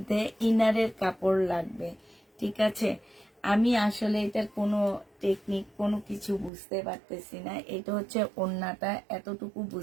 ইনারের কাপড় লাগবে, ঠিক আছে। আমি আসলে এটার কোনো টেকনিক কোনো কিছু বুঝতে পারতেছি না। এটা হচ্ছে ওড়নাটা, এতটুকু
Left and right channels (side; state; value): left; drops out; at 6.5 s